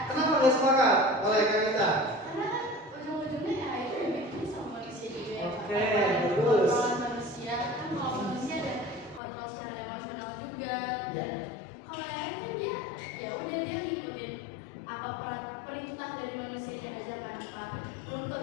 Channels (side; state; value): right; drops out; at 9.2 s